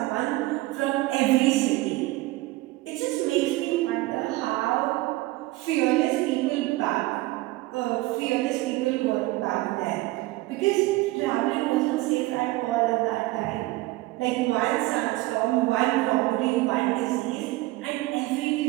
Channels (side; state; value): left; quieter; 19.5 dB